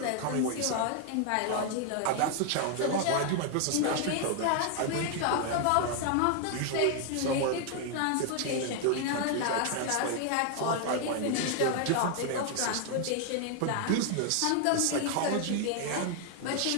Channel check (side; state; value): both; different; correlation 0.00